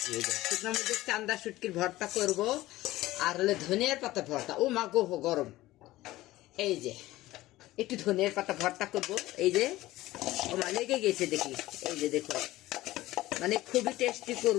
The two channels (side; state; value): right; quieter; 17.1 dB